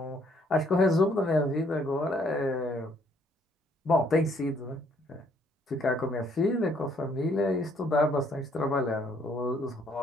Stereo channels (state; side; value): normal; both; correlation 0.66